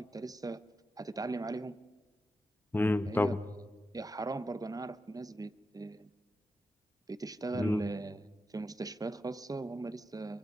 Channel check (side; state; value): both; normal; correlation 0.88